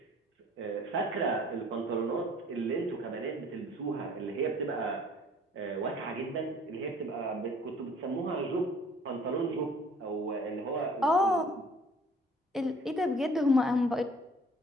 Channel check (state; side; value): normal; both; correlation 0.54